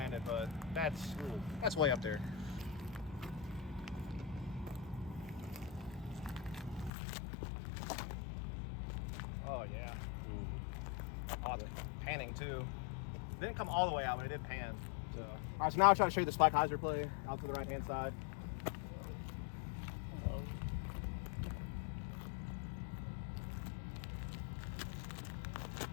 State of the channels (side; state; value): right; drops out; at 6.9 s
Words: but that's way up there. Oh yeah. Oh, the panning too. Didn't come all the way out, but it did pan. So. All right, so now I'll try to show you the spike hyzer play out to the right hand side.